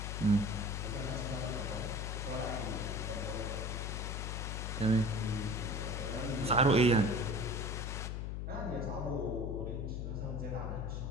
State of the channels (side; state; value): left; noise; hum, 3 dB below the sound